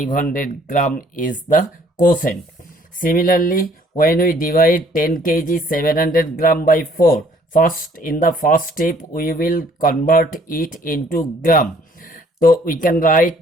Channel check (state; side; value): normal; both; correlation 0.60